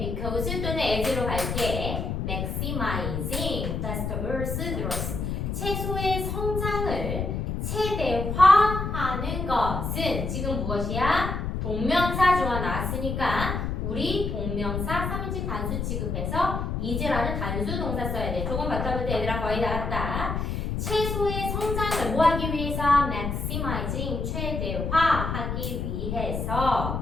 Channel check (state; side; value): noise; left; rumble, 2 dB below the sound